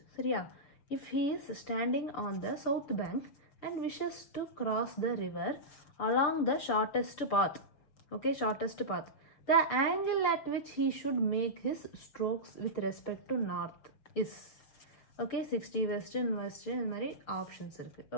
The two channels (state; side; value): late; right; 6.4 ms